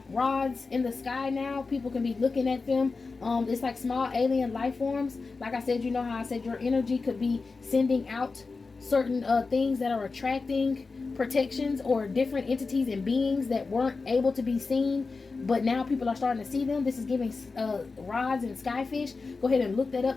rods in the sky now. People can be looking at them. It's like small alien life forms. Like I said, you know how I said your energy could be sending out certain things that are attracting protections or different entities and beings that weren't able to be seen, but now people are starting to see them. This is giving rods and skyfish. Go ahead and look that up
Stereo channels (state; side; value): quieter; right; 4.2 dB